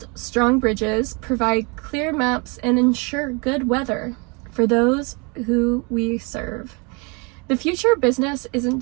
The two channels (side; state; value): left; quieter; 31.0 dB